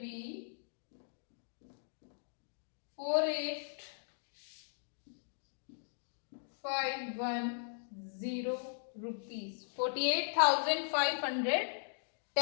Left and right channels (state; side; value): silent; right; digital silence